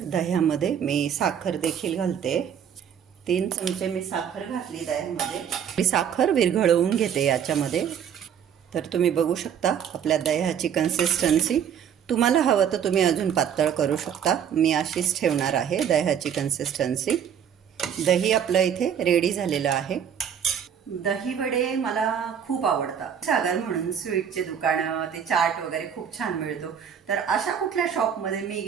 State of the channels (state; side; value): quieter; left; 8.4 dB